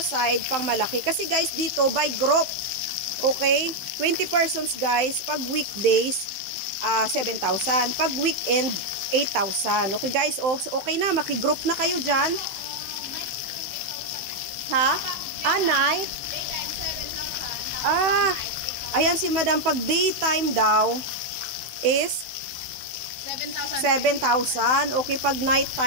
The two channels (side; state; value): left; late; 15 ms